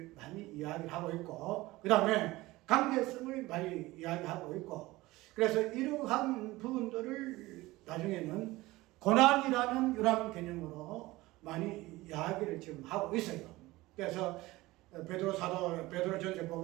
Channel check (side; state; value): left; quieter; 19.4 dB